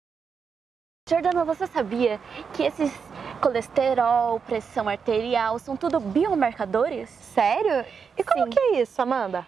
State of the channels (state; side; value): quieter; left; 6.1 dB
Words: Jordana, você sabia que esses colesterol, pressão arterial, são tudo biomarcadores? Sério? E como Sim. que é isso, Amanda?